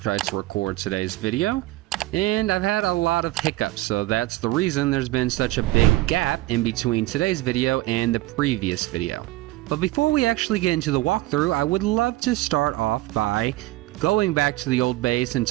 to record today's video, and I've had a lot of hiccups, so that's the reason there's been such a big gap in between today's video and the previous video. But before we actually get into the walkthrough, I would love to start off by going back to the old base and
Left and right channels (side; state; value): left; quieter; 17.6 dB